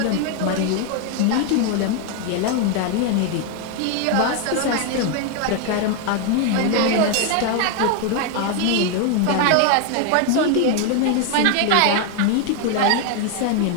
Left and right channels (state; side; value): different; both; correlation 0.01